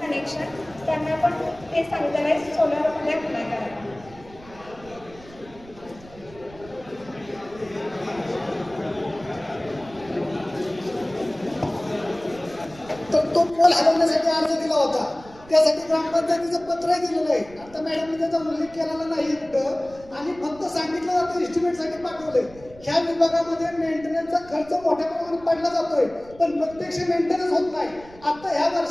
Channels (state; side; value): noise; right; rumble, 21 dB below the sound